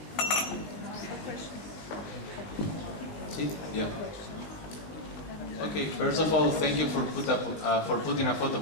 See? Yeah. Okay. First of all, thank you for putting a photo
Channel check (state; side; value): late; right; 19 ms